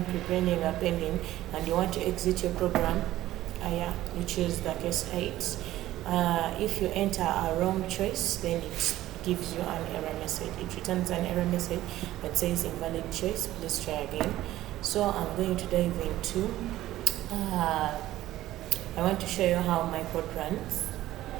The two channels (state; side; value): quieter; left; 14.9 dB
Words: preparing, appending, and you want to exit your program, yeah, you choose the case 8. If you enter a wrong choice, then it gives you an error message. It returns an error message that says invalid choice, please try again. So I'm going to dive into, I want to show you how my code runs.